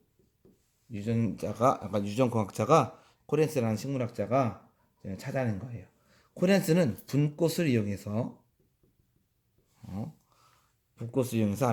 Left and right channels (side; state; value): both; identical; correlation 1.00